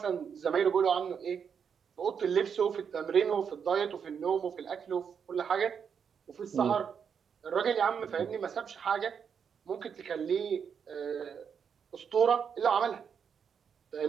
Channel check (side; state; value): left; quieter; 7.0 dB